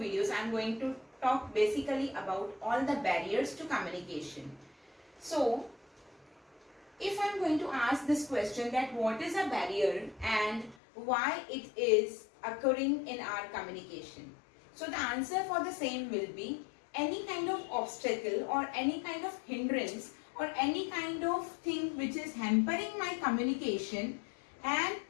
I am going to talk basically about all the barriers to communication. So, if I am going to ask this question that what is a barrier and why it is occurring in our communication. So the answer for the same will be any kind of obstacle or any kind of hindrance or any kind of thing which is hampering my communication and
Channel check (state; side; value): drops out; right; at 10.8 s